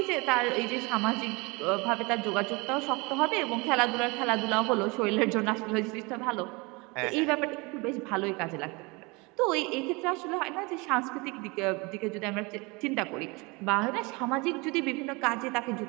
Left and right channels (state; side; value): quieter; left; 26.7 dB